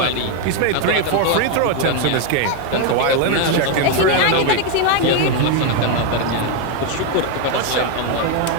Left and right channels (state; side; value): different; both; correlation 0.01